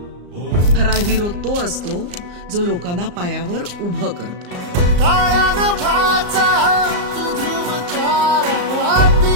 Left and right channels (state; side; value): late; left; 34 ms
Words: खरा हिरो तो असतो जो लोकांना पायावर उभं करतो। काळ्या नभाचा तू ध्रुव तारा